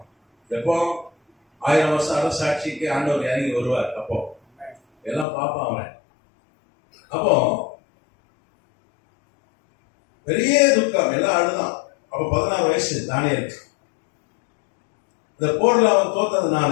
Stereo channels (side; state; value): right; drops out; at 5.2 s